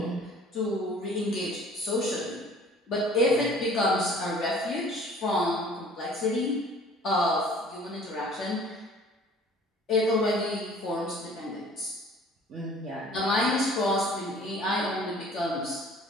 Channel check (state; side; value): normal; both; correlation 0.51